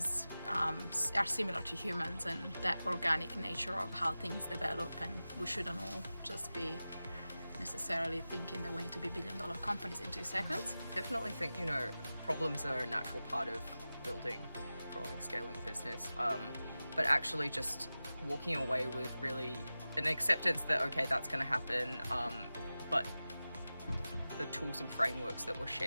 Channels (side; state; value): both; inverted; correlation -0.95